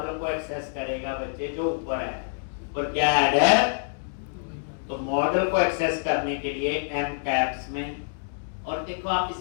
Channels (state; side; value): silent; right; digital silence